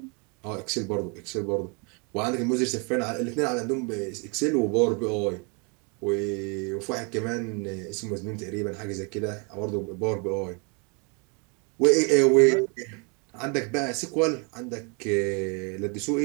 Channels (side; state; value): left; quieter; 34.1 dB